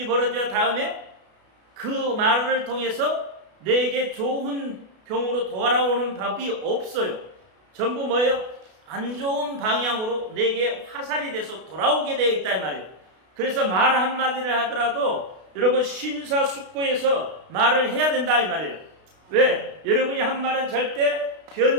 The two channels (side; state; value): left; late; 32 ms